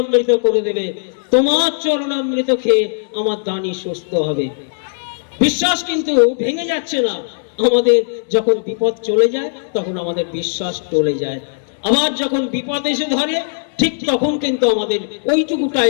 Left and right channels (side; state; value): right; silent; 68 dB below the other